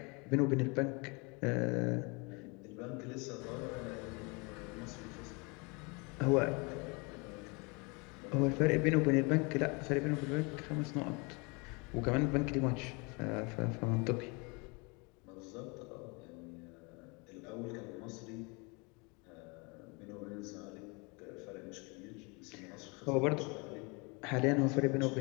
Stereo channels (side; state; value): right; quieter; 30.0 dB